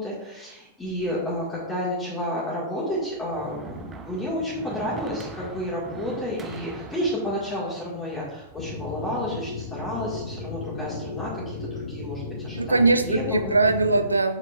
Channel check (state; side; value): inverted; both; correlation -0.40